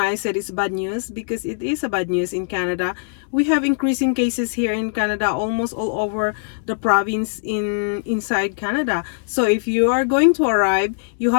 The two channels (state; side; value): silent; right; 65 dB below the other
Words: I said it's bad news, because it is a bad news in Canada. We have increasing cases here in Canada, almost all over the province inside Canada. So if you are going to arrive, you